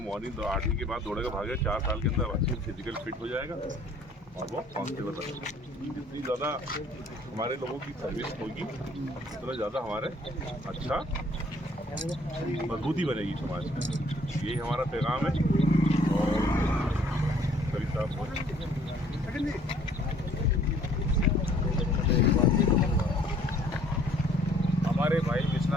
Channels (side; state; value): both; normal; correlation 0.59